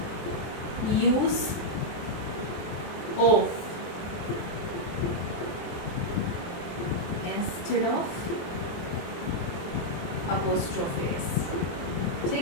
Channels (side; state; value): right; late; 23 ms